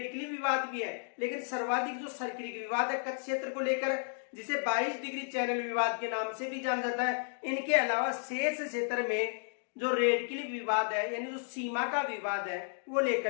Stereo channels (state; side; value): silent; right; 56 dB below the other